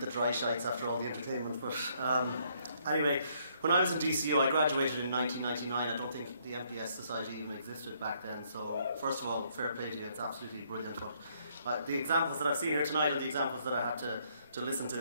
dry shites after all the entertainment. But anyway, when I was in DCU, I graduated in 1999. I don't think the MPS Society even existed back then. So first of all, fair play to you. It's absolutely brilliant. But the examples that I've seen here tonight are the examples that I had to listen to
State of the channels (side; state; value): both; inverted; correlation -0.69